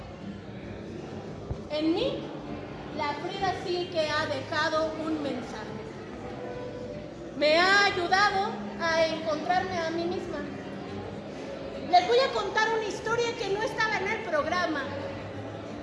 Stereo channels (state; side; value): identical; both; correlation 1.00